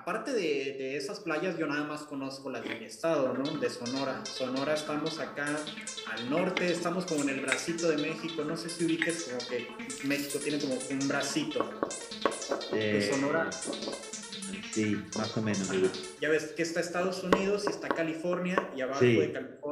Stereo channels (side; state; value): both; identical; correlation 1.00